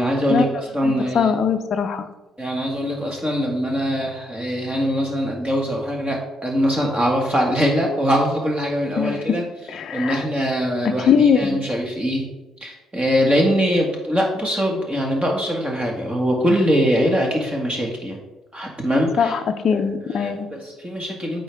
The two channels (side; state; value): both; normal; correlation 0.77